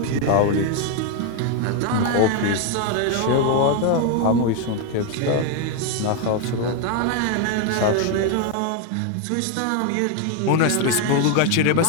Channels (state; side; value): different; both; correlation 0.01